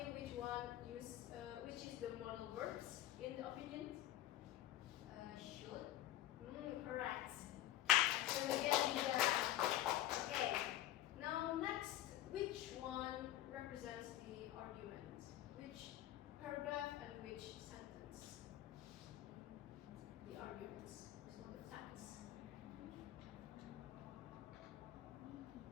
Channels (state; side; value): quieter; right; 13.9 dB